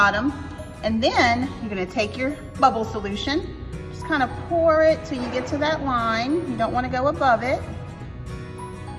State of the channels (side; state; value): both; identical; correlation 1.00